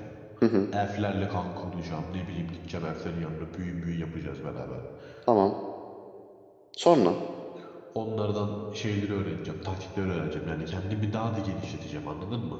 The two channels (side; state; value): both; identical; correlation 1.00